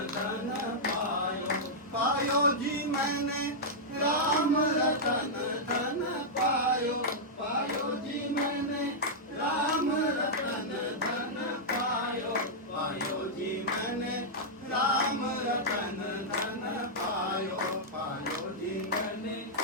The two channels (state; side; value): normal; both; correlation -0.08